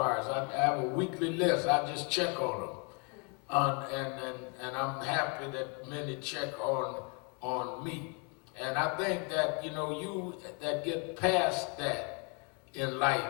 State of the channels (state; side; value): quieter; right; 33.8 dB